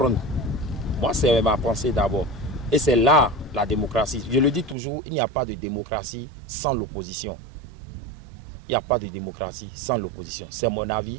Moi, c'est ma pensée d'abord. Et c'est là la démocratie. Je le dis toujours, il n'y a pas de démocratie sans l'opposition. Il n'y a pas de démocratie sans l'opposition. C'est mon avis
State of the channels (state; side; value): drops out; left; at 4.8 s